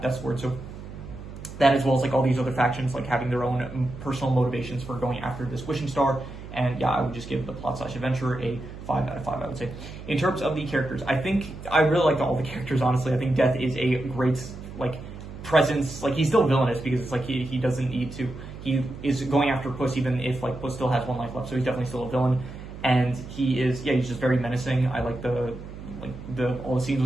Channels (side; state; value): right; noise; hum, 13 dB below the sound